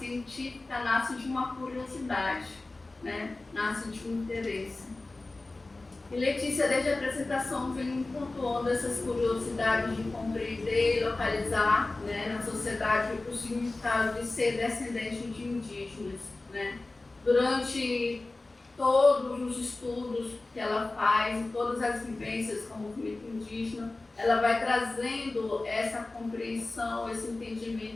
nasce de uma curiosidade, né? Nasce de um interesse. E Letícia, desde a apresentação, vem pontuando essas curiosidades de compreender e localizar, né, na sociedade o significado de ser descendente de indígenas, né? Durante todos os estudos que ela faz, todas as vivências com o movimento indígena, ela vai trazendo essa compreensão, esse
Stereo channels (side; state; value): right; quieter; 3.2 dB